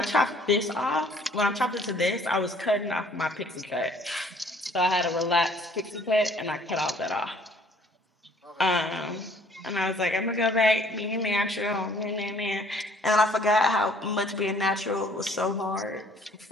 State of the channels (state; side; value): normal; both; correlation 0.58